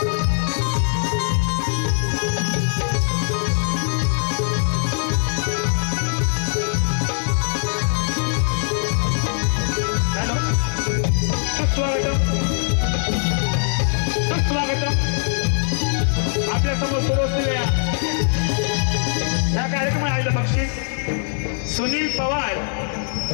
चला आपल्या समोर सुरू असलेल्या या कार्यक्रमात आलेलं बक्षीस सुनील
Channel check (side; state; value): right; silent; digital silence